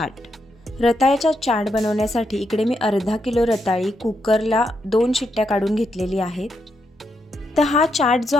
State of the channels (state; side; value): normal; both; correlation 0.81